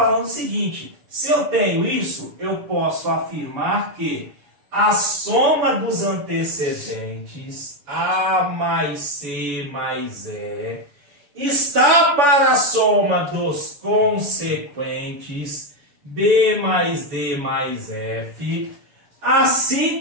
o seguinte: se eu tenho isso, eu posso afirmar que a soma dos antecedentes, A mais C mais E, está para a soma dos consequentes, B mais D mais F,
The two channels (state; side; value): late; left; 6.9 ms